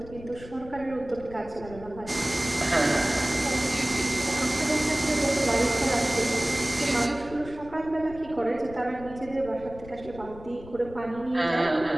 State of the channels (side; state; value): left; noise; rumble, 16 dB below the sound